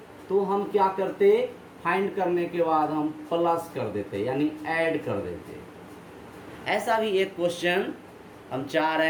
तो हम क्या करते, फाइंड करने के बाद हम प्लस कर देते यानी ऐड कर देते। ऐसा भी एक क्वेश्चन हम चाह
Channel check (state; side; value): identical; both; correlation 1.00